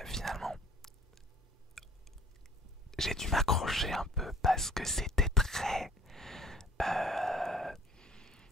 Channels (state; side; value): normal; both; correlation 0.53